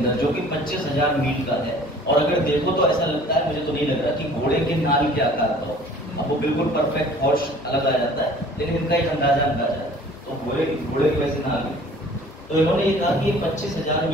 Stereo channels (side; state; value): both; normal; correlation 0.50